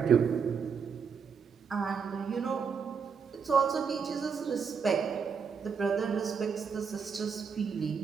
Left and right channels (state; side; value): quieter; left; 6.2 dB